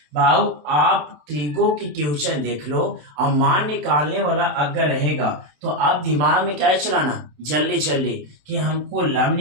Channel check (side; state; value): left; late; 27 ms